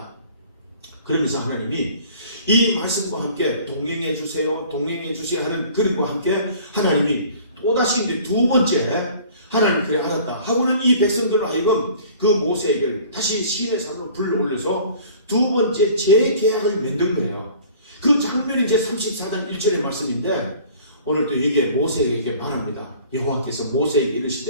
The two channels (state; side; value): inverted; both; correlation -0.49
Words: 그러면서 하나님이 이 말씀과 함께 동행해 주세요, 동행해 주세요 하는 그림과 함께 하나님이 또다시 이제 두 번째 하나님 그래 알았다 하고는 이 백성들을 하여금 그 모세에게 다시 시인의 산으로 불러올려서 두 번째 재계약을 만든 거예요. 그 장면이 이제 34장 1절의 말씀인데 오늘 또 여기에 모세에게 말합니다. 여호와께서 모세에게